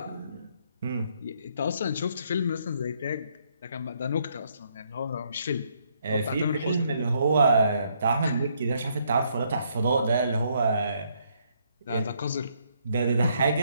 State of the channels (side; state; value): both; inverted; correlation -0.72